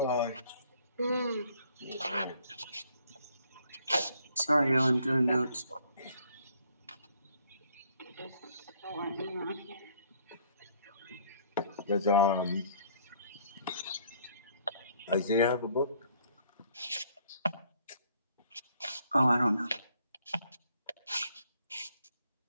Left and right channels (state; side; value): inverted; both; correlation -0.63